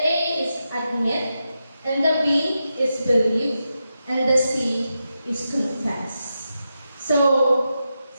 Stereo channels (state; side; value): inverted; both; correlation -0.88